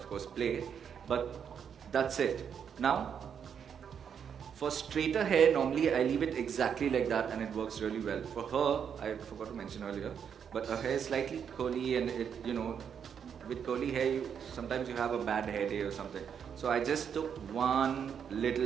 course, play. But that's it. Now, for straighter hair, normally I leave it exactly like that and it works really well. For her, I forgot to mention earlier, but her hair is slightly curly and it, with curly hair, sometimes you have a bad hair day or something. So I just took one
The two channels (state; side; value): quieter; left; 7.7 dB